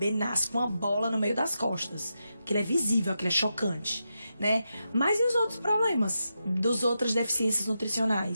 nasce com uma bola no meio das costas. Aquilo é visível, aquilo é chocante, né? Mas e os outros problemas das outras deficiências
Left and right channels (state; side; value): inverted; both; correlation -0.87